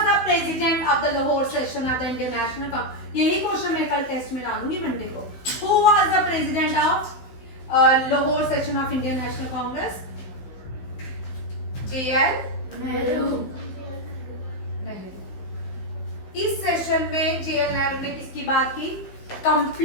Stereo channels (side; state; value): right; late; 15 ms